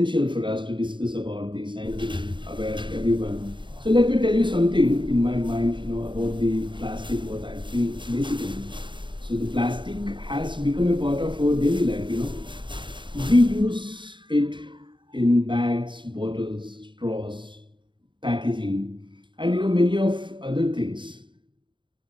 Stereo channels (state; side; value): late; left; 0.23 ms